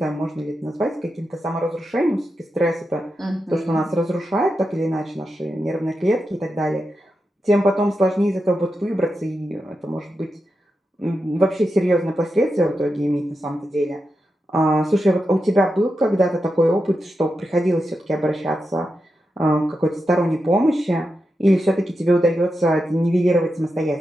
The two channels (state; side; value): normal; both; correlation 0.88